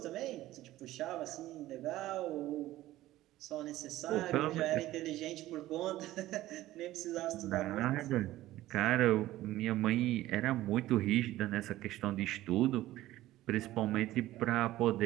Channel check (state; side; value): quieter; left; 15.6 dB